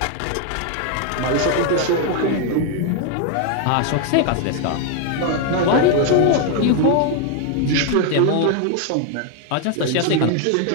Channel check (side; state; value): both; different; correlation 0.01